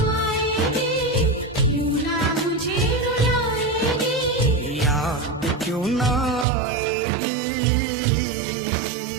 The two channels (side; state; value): left; drops out; at 6.5 s